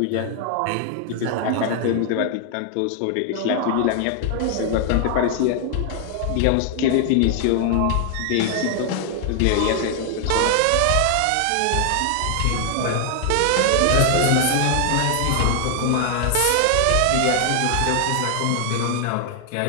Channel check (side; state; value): both; different; correlation 0.00